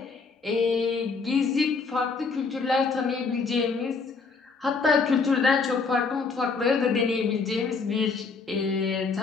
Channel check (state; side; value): quieter; right; 4.7 dB